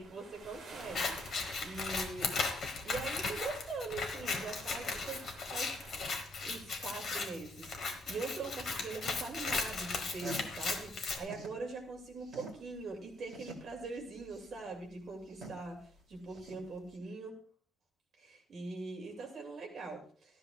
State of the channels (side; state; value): both; normal; correlation 0.70